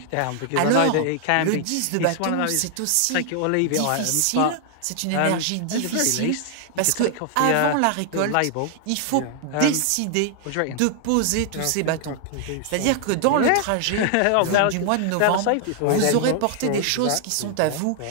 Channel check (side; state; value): both; different; correlation 0.00